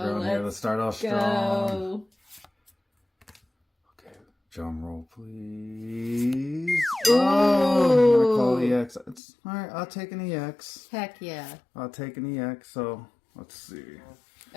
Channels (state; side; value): drops out; right; at 9.2 s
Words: here. Let's start off strong. Okay, drum roll, please. Ooh. Oh, I call EX. It's all right. I'll take an EX. Heck yeah. I'll take an EX. So let's see.